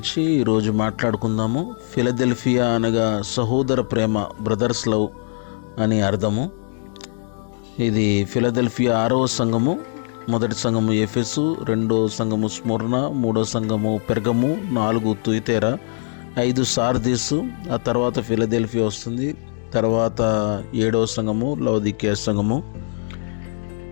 ఈరోజు మాట్లాడుకుందాము. ఫిలదెల్ఫియా అనగా సహోదర ప్రేమ, బ్రదర్స్ లవ్ అని అర్థము. ఇది ఫిలదెల్ఫియా 6వ సంఘము. మొదటి సంఘము ఎఫెసు, 2వ సంఘము స్ముర్న, 3వ సంఘము పెర్గము, 4 తుయితేరా, 5 సార్దీసు, ఆ తర్వాత ఫిలదెల్ఫియా వస్తుంది. తర్వాత 7వ సంఘము లవొదికీయ సంఘము.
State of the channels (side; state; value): right; silent; digital silence